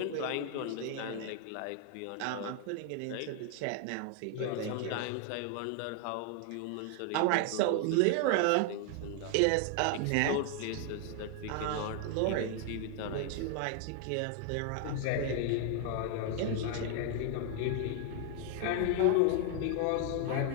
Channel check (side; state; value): both; different; correlation 0.00